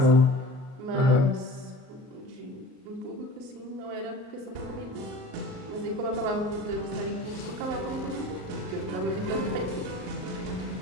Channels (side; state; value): left; late; 38 ms